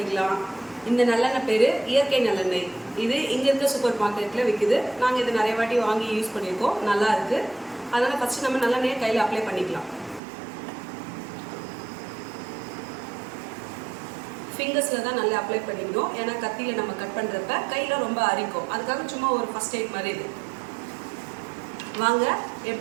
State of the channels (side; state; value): left; drops out; at 10.2 s